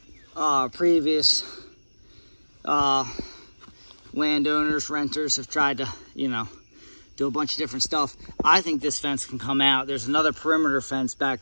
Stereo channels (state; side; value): inverted; both; correlation -1.00